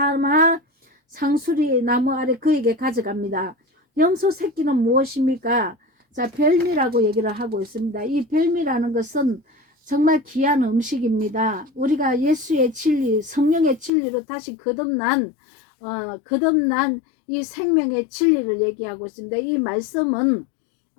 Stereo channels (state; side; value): drops out; right; at 13.9 s